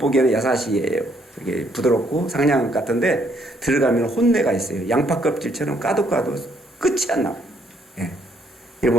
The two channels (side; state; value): both; normal; correlation 0.69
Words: 야사시예요. 이게 부드럽고 상냥한 것 같은데 들어가면 혼내가 있어요. 양파 껍질처럼 까도 끝이 안 나와요. 예.